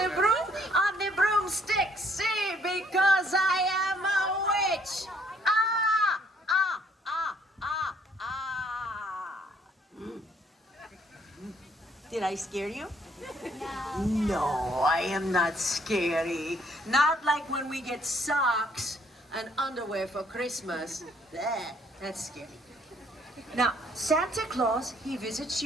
broom? On the broomstick, see, because I am a witch. Did I scare you? No, I am not scary. Not like when we get socks and underwear for Christmas. That's scary. Now, Santa Claus, he visits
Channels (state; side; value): normal; both; correlation 0.64